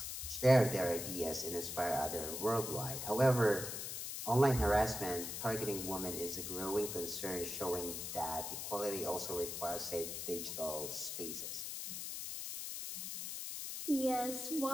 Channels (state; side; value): noise; left; hiss, 5 dB below the sound